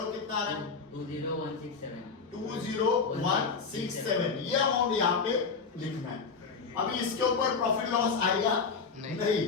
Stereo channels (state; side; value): quieter; right; 5.0 dB